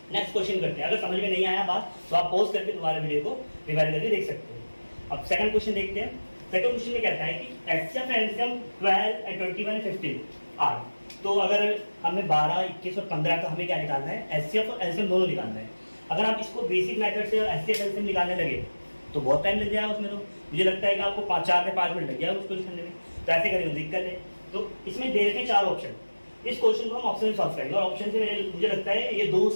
नेक्स्ट क्वेश्चन करते हैं। अगर समझ में नहीं आया बात तो आप पॉज करके दोबारा वीडियो को रिवाइज करके देख सकते हैं। अब सेकंड क्वेश्चन देखते हैं। सेकंड क्वेश्चन में कहता है कि HCF and LCM 12 and 21 and 15 are. तो अगर हमें 12, 21 और 15 का हमें क्या निकालना है, HCF और LCM दोनों निकालना है। अगर आप इसको बेसिक मेथड से HCF LCM निकालने लगे तो बहुत टाइम लग जाएगा उसमें। तो मुझे लगता है कि आपको 4 से 5 मिनट लग जाएगा उसको करने में। तो ऐसे करेंगे, दिक्कत है। तो इसमें दे रखे 4 ऑप्शन, इस क्वेश्चन को हम ऑप्शन से सॉल्व करेंगे और ऑप्शन से मुझे लगता है ये 2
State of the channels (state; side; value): inverted; both; correlation -1.00